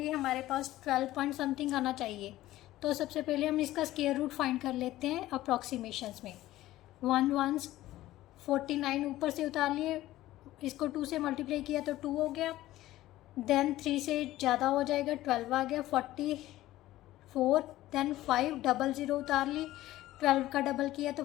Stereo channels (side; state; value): right; quieter; 15.6 dB